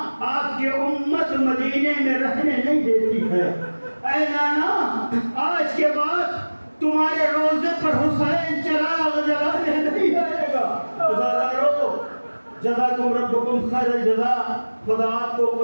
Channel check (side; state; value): both; inverted; correlation -1.00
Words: آپ کی امت مدینے میں رہنے نہیں دیتی ہے، اے نانا آج کے بعد تمہارے روزے پر حسین چراغ جلانے نہیں آئے گا۔ عزادارو جزاکم ربکم خیر الجزا، خدا آپ کو